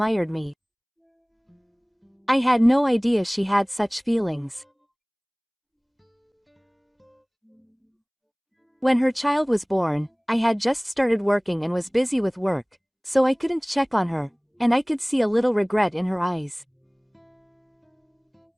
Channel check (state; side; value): identical; both; correlation 1.00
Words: me. I had no idea she had such feelings. When her child was born, I had just started working and was busy with work, so I couldn't check on her, and I could see a little regret in her eyes.